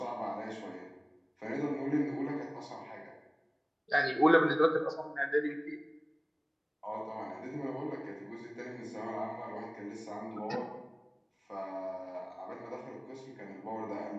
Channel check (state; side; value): identical; both; correlation 1.00